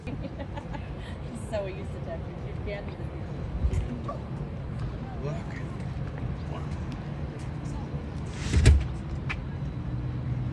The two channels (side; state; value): both; identical; correlation 1.00